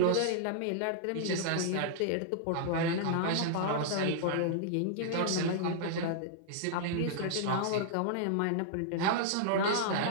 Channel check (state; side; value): different; both; correlation -0.01